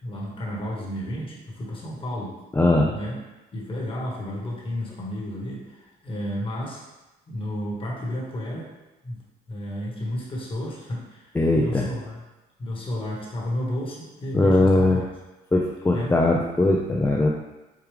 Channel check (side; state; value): both; normal; correlation 0.83